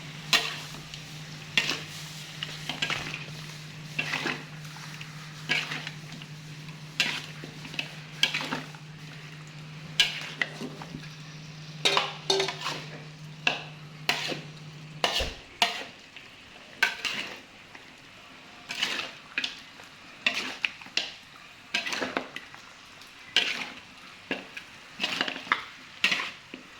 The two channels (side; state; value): both; identical; correlation 1.00